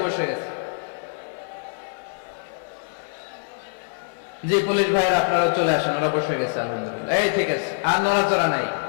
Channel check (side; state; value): right; silent; 56 dB below the other